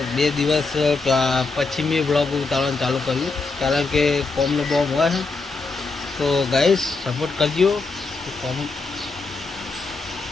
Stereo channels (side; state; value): right; quieter; 3.9 dB